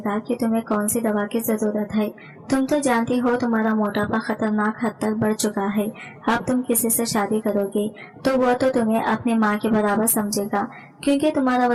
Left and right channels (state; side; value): identical; both; correlation 1.00